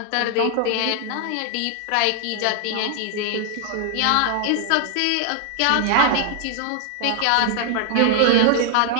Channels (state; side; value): different; both; correlation 0.00